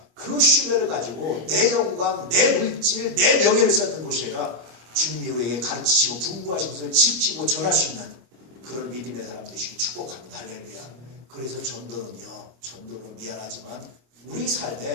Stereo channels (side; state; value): left; late; 25 ms